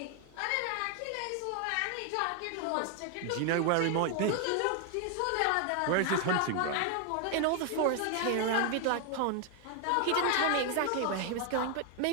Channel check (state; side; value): different; both; correlation 0.01